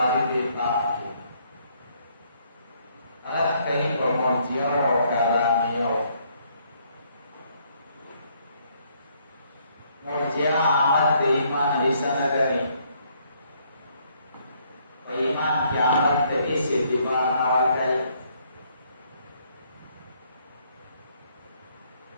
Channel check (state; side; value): inverted; both; correlation -0.68